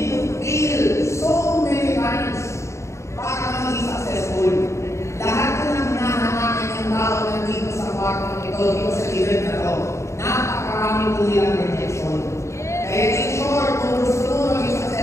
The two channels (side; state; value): right; late; 0.14 ms